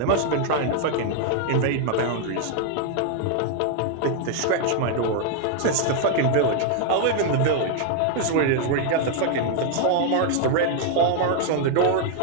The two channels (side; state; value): both; different; correlation 0.00